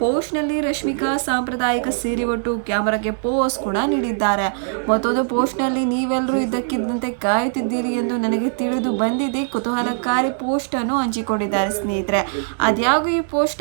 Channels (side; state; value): left; silent; digital silence